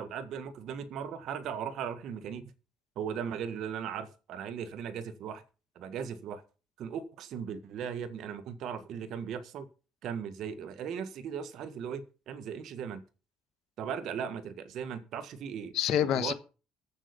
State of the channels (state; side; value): normal; both; correlation 0.49